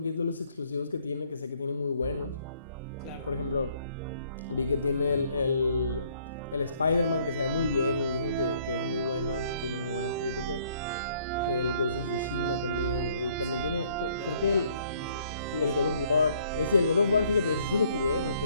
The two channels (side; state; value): both; inverted; correlation -0.63